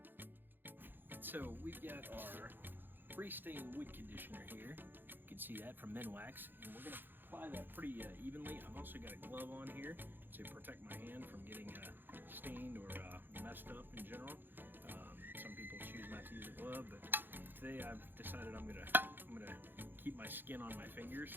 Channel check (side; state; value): left; late; 0.095 ms